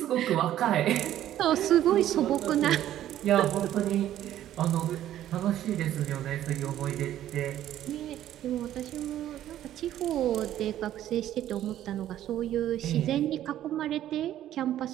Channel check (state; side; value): quieter; left; 12.2 dB